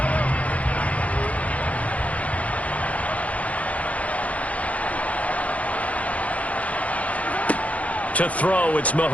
To throw, it's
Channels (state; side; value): late; right; 0.067 ms